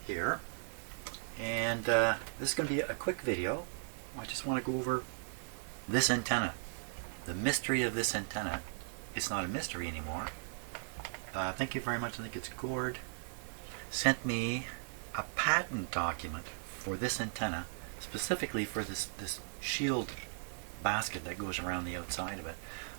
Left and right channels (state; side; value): silent; left; digital silence